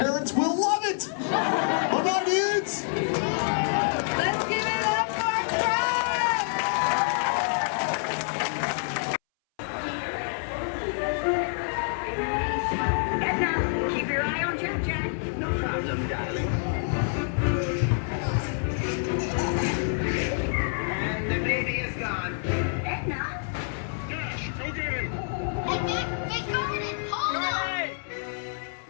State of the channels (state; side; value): silent; right; 60 dB below the other